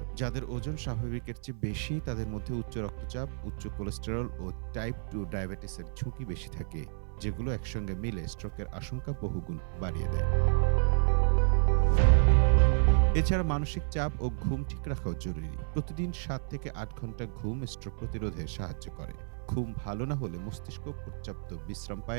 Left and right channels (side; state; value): left; silent; 57 dB below the other